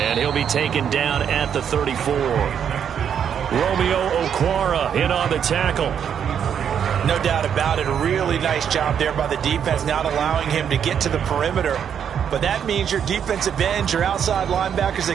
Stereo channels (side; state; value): left; quieter; 8.3 dB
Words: he'll be taken down at the 34. Romeo Okwara in on the tackle. No doubt about it. A really nice job there by the defense, not allowing him to get to the perimeter. But that means your defensive ends, your outside linebackers, the